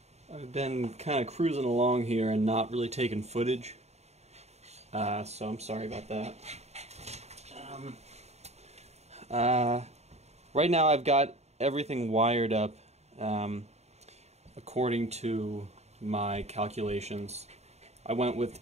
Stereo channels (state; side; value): late; left; 0.32 ms